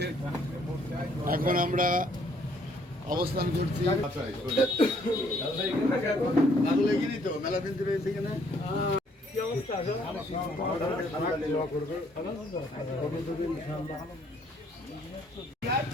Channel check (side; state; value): both; normal; correlation 0.65